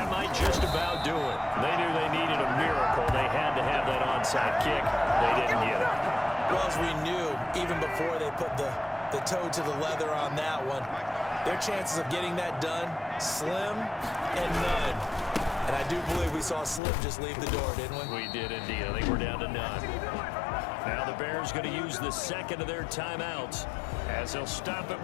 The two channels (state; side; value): drops out; right; at 16.8 s